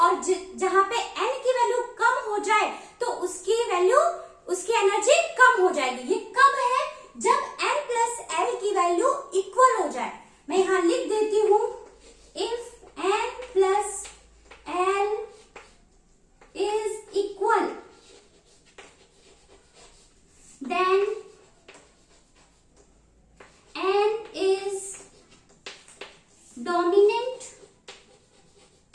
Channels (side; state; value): both; identical; correlation 1.00